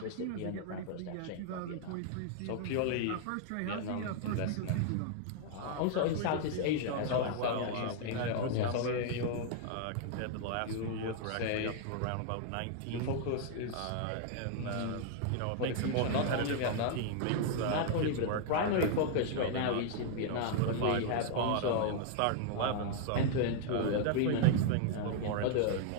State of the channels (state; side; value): different; both; correlation 0.00